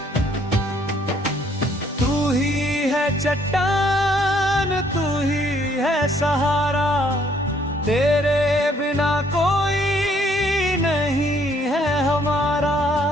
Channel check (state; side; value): normal; both; correlation 0.65